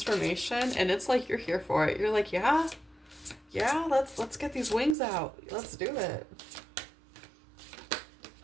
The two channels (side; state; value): left; drops out; at 5.0 s